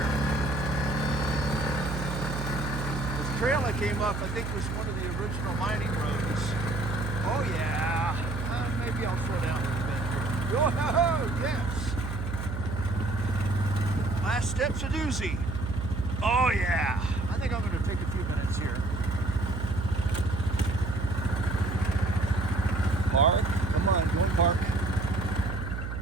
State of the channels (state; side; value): noise; right; hum, 5 dB below the sound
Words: This trail I came up, I think, was one of the original mining roads. Oh yeah. Maybe I'll slow down a little bit here. Oh yes. Last step's a doozy. Oh yeah. I think I'm going to take a few minutes here. Park. Come on, go and park.